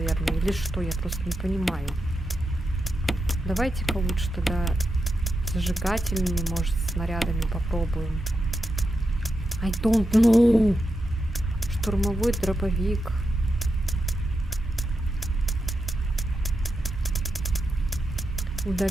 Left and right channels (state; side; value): normal; both; correlation 0.87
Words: или что, я просто не понимаю. Давайте-ка лучше тогда зажигательными, может, снарядами попробуем. I don't know. Штурмовой дробовик.